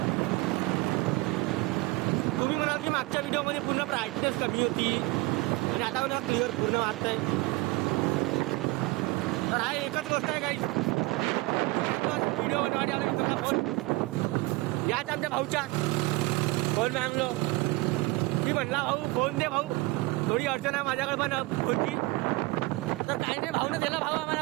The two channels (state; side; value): quieter; left; 22.4 dB